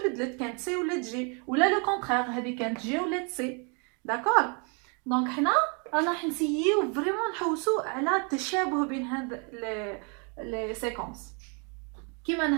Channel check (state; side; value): quieter; left; 36.3 dB